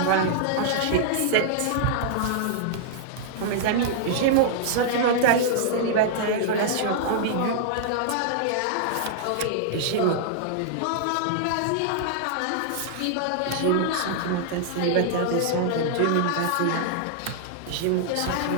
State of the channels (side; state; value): both; different; correlation -0.01